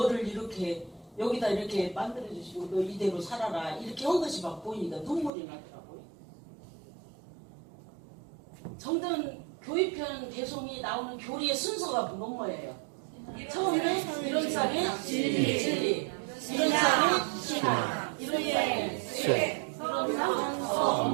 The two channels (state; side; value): drops out; left; at 5.3 s